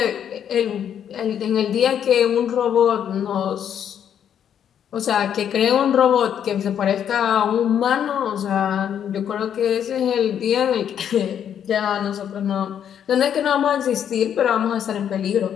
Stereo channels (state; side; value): quieter; right; 9.1 dB